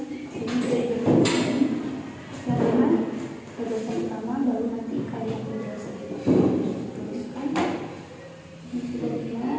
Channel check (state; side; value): identical; both; correlation 1.00